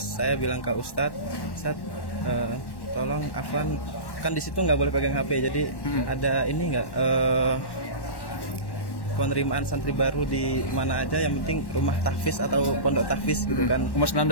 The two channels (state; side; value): late; right; 1.1 ms